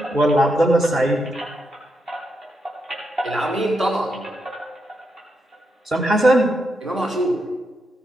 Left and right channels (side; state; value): both; normal; correlation 0.82